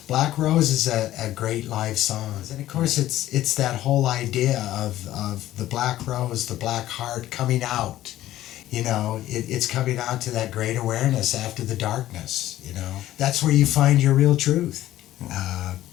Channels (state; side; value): quieter; right; 14.1 dB